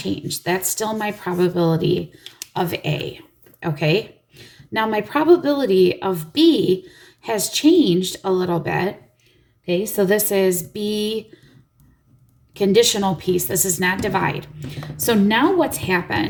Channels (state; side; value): identical; both; correlation 1.00